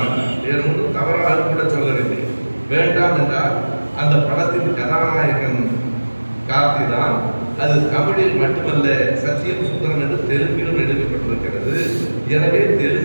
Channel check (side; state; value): both; inverted; correlation -1.00